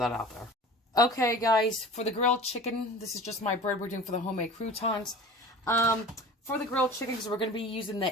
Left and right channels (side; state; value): both; normal; correlation 0.39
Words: out there. Okay, guys, for the grilled chicken, this is just my bread we're doing for the homemade croutons. For the grilled chicken, because we're going to be using